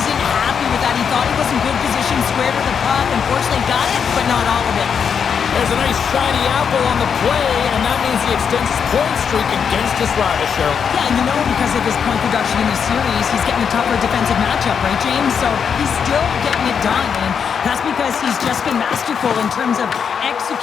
happy with that. He thought he was in good position, square to the puck. Unfortunately, got it, but not all of it. There's a nice shiny apple on the play, and that means he extends his point streak against his rival, Cheryl. Yeah, and you know because of his point production in the series, he's getting a tougher defensive matchup, right, James? So he's still getting it done, and that's because he's just been masterful in terms of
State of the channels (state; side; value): quieter; right; 7.0 dB